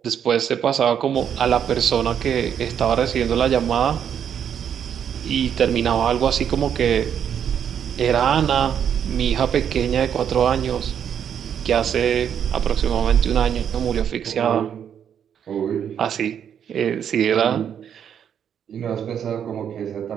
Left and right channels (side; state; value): left; quieter; 8.6 dB